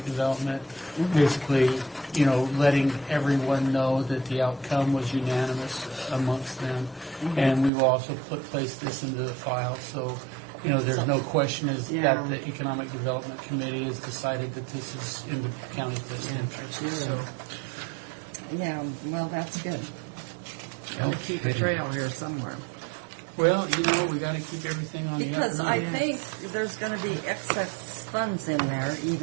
development, basically, you know, letting everyone know that the outcome was unanimous amongst them, and we will also place this into the file, so, you know, there's no question that the economic development committee has decided that this is in the county's best interest. So, yeah, well, that's good. Gotta keep a trail here somewhere. well, you know, we got to keep everything on the up Because and I up. think there's going to be excess funds in there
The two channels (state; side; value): drops out; left; at 7.7 s